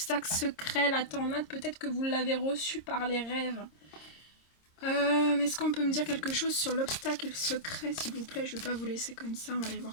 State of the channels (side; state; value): right; late; 26 ms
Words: secret, la tornade, peut-être que vous l'avez reçu par les rêves. Est-ce qu'on peut me dire quelque chose sur l'obstacle secret, s'il vous plaît? Je ne vais pas vous laisser comme ça, on va aller voir